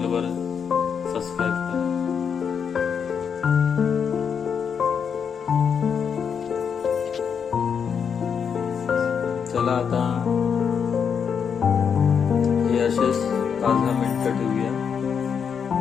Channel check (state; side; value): quieter; right; 6.9 dB